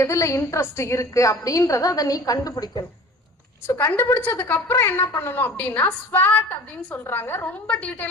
எதுல இன்ட்ரெஸ்ட் இருக்கு அப்படின்றத அதை நீ கண்டுபிடிக்கணும். சோ கண்டுபிடிச்சதுக்கு அப்புறம் என்ன பண்ணணும் அப்படின்னா ஸ்வாட் அப்படின்னு சொல்றாங்க. ரொம்ப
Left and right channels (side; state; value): both; normal; correlation 0.43